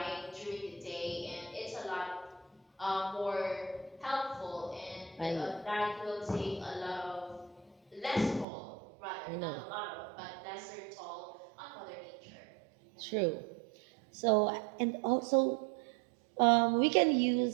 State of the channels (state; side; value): drops out; left; at 8.5 s